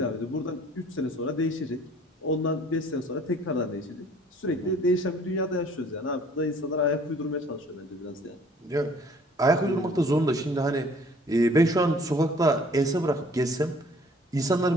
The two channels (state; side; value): normal; both; correlation 0.55